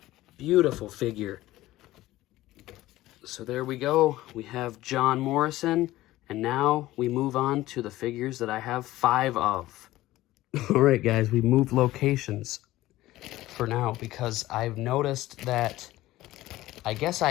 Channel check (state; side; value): quieter; right; 16.4 dB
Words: Beautiful figure. So there we go. We have John Morrison. And now we move on to the figures that I have 5 of. All right, guys, we moved locations for now because I've noticed that I guess